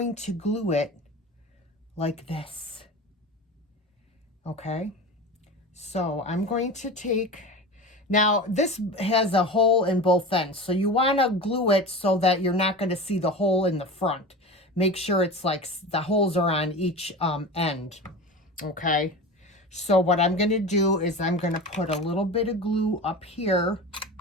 to glue it like this. Okay, so I'm going to take, now this has a hole in both ends, so you want to glue it so that you're not going to see the hole in the front. Make sure it's like the holes are on each end. Okay, so what I'm going to do is I'm going to put a little bit of glue up here,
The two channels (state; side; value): normal; both; correlation 0.30